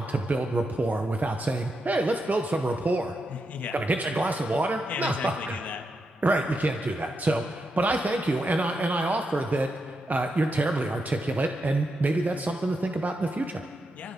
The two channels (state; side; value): normal; both; correlation 0.85